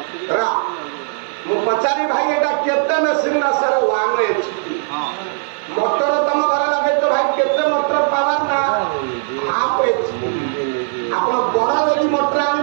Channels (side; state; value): left; silent; 60 dB below the other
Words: ମୁଁ ପଚାରି ଭାଇ ଏଇଟା କେତେ ମେସିନ୍ ନା ସାର୍? 1 HP। ମୋଟର ତମ ଘରେ ଲଗେଇଛ ଭାଇ କେତେ ମୋଟର ପାୱାର? ନା 1/2 HP। ଆପଣ ବଡ ଯଦି ମୋଟର